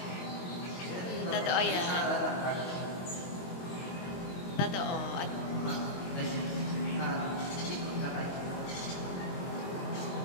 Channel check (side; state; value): right; late; 22 ms